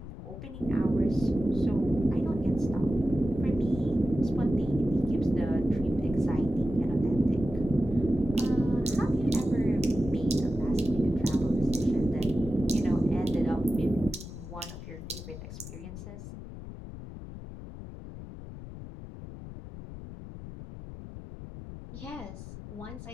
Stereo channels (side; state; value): left; noise; rumble, 12 dB below the sound